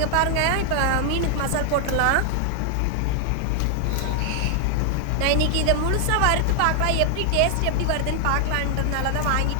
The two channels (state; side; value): different; both; correlation 0.00